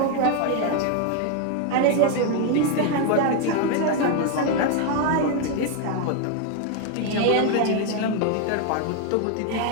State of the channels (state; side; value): different; both; correlation 0.01